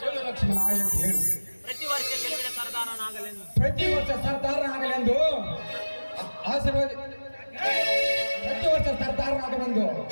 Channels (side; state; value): both; inverted; correlation -1.00